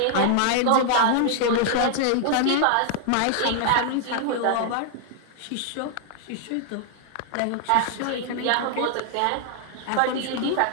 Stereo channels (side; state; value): both; different; correlation 0.00